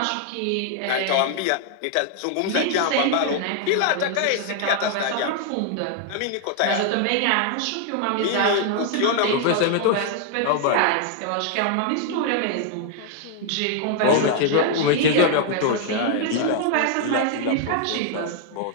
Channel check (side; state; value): both; different; correlation 0.00